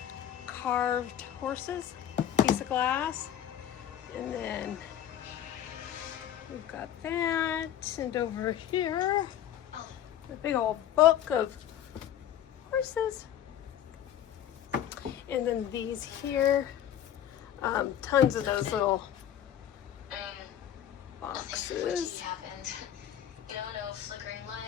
carved horses, piece of glass, and then we've got that, and over here, a big old book of horses. And then these here, tons of those little boxes. No flickering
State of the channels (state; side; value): quieter; right; 10.6 dB